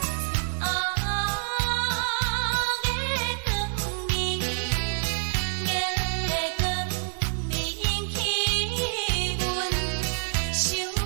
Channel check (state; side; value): silent; left; digital silence